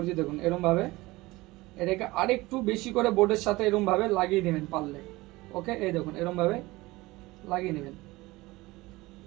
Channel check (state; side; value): quieter; left; 20.5 dB